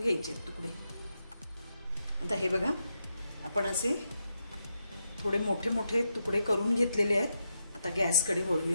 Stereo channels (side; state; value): both; inverted; correlation -0.84